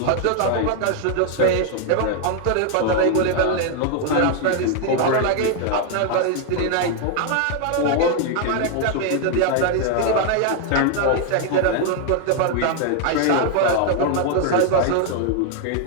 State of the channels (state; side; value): different; both; correlation 0.00